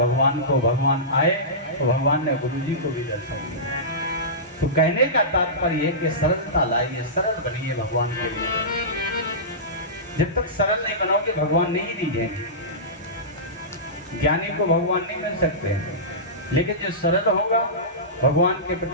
को, भगवान आए तो भगवान ने गुरुजी को भी दर्शन दिया। तो कहने का तात्पर्य कि सरलता लाइए, सरल बनिए भगवान के लिए। जब तक सरल नहीं बनाओगे भगवान नहीं दीजिएंगे। ज्ञानी को भगवान नहीं मिल सकते, लेकिन जो सरल होगा भगवान के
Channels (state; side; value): normal; both; correlation -0.19